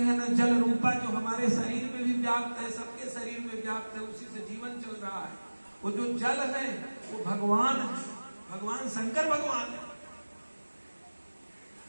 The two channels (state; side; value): inverted; both; correlation -1.00